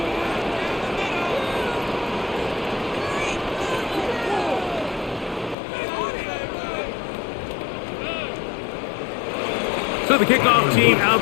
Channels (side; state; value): right; drops out; at 5.6 s